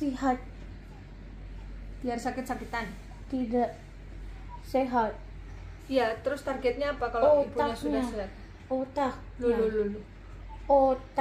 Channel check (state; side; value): identical; both; correlation 1.00